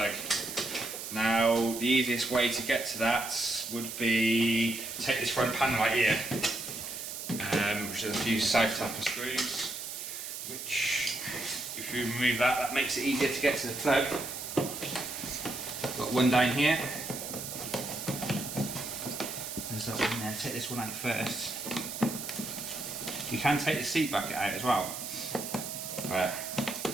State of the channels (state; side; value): noise; right; hiss, 7 dB below the sound